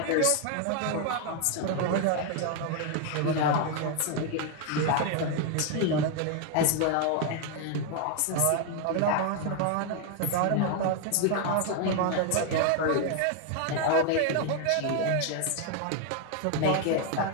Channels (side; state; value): both; different; correlation 0.01